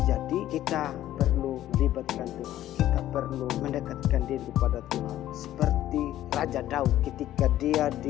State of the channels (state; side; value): quieter; right; 13.2 dB